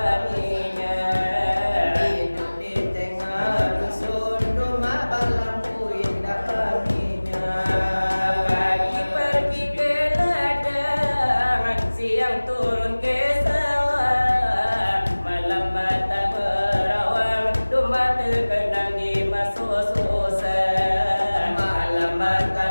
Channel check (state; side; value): inverted; both; correlation -1.00